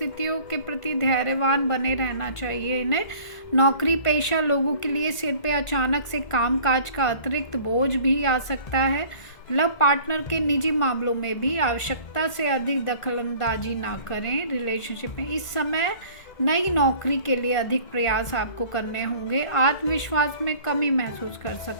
के प्रति धैर्यवान बने रहना चाहिए इन्हें। नौकरी पेशा लोगों के लिए सिर पे अचानक से कामकाज का अतिरिक्त बोझ भी आ सकता है। लव पार्टनर के निजी मामलों में भी आवश्यकता से अधिक दखलंदाजी ना करें। रिलेशनशिप में इस समय नई नौकरी के लिए अधिक प्रयास आपको करने होंगे। आत्मविश्वास में कमी महसूस कर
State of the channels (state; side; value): late; right; 1.4 ms